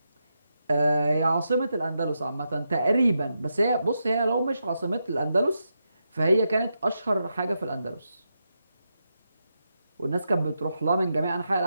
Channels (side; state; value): both; inverted; correlation -0.85